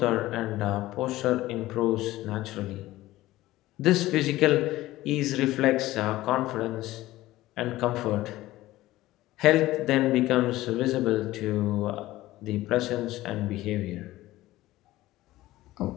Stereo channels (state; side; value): quieter; right; 16.7 dB